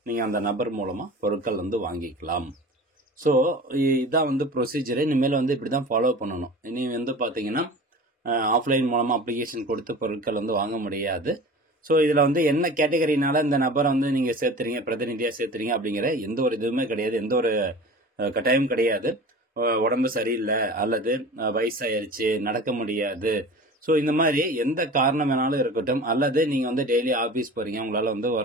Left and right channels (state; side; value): normal; both; correlation 0.38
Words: நீங்கள் அந்த நபர் மூலமாக பொருட்கள் வந்து வாங்கிக்கலாம். ஸோ இதான் வந்து ப்ரொசீஜரு. இனிமேல் வந்து இப்படி தான் ஃபாலோ பண்ணணும். இனி வந்து பார்த்தீங்கன்னா ஆஃப்லைன் மூலமாக அப்ளிகேஷன் கொடுத்து பொருட்கள் வந்து வாங்க முடியாது. ஸோ இதில் வந்து என்ன கேட்டகரினால இந்த நபரை வந்து நீங்கள் சேர்த்துறீங்க, பிரதிநிதியாக சேர்த்துறீங்க அப்படிங்கிற எந்த ஒரு இதுவுமே கிடையாது, எந்த ஒரு கட்டாயம் கிடையாது. உடம்பு சரியில்லை அல்லது வயசாயிருச்சு, நடக்க முடியாது, ஸோ இந்த மாதிரி எந்த காரணம் வேணாலும் இருக்கட்டும், அல்லது நீங்கள் வந்து டெய்லி ஆஃபீஸ் போகிறீங்க, உங்களால் வந்து